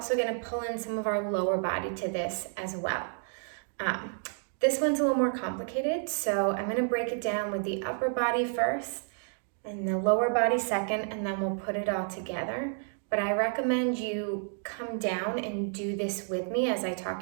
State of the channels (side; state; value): left; silent; 57 dB below the other